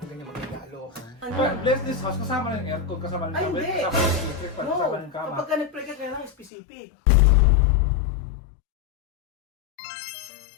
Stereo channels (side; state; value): right; drops out; at 6.5 s